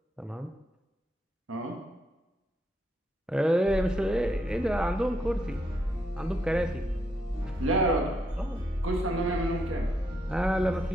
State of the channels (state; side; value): normal; both; correlation 0.77